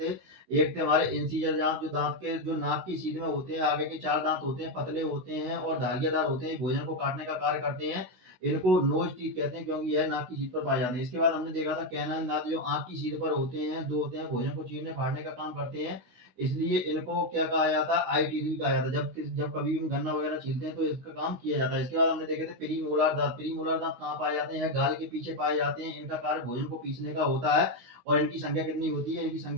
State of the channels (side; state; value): left; late; 16 ms